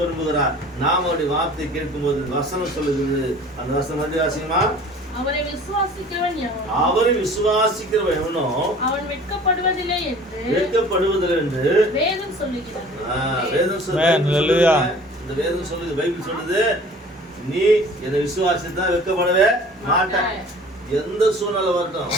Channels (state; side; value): normal; both; correlation 0.47